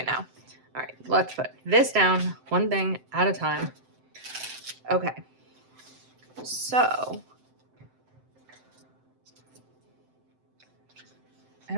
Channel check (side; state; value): left; late; 7.8 ms